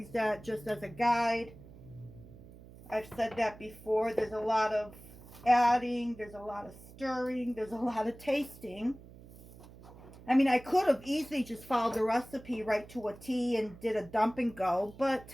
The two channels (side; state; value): right; noise; hum, 19 dB below the sound